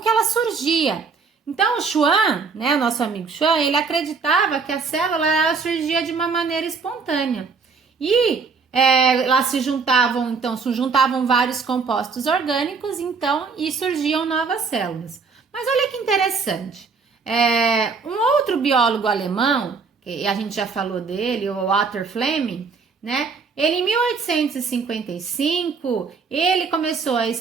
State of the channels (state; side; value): quieter; left; 5.0 dB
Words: que ela surgia. Então, o Schwann, né, o nosso amigo Schwann, ele acreditava que a célula ela surgia de uma maneira espontânea. E lá se juntavam vários compostos orgânicos, então, e surgiam novas células. Mas olha que interessante. Um outro biólogo alemão, que a gente já falou dele, o Walter Fleming, né? Ele, em 1855, ele começou a